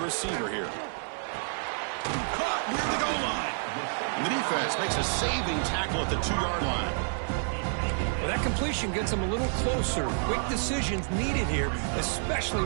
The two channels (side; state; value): left; silent; 59 dB below the other